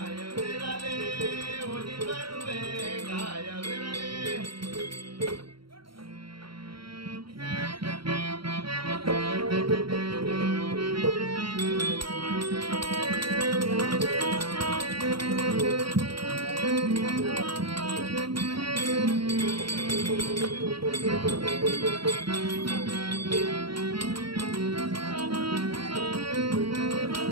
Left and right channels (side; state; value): left; late; 0.74 ms